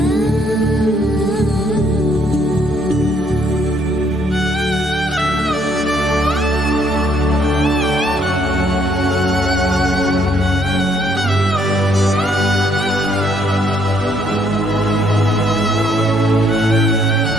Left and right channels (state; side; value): normal; both; correlation 0.69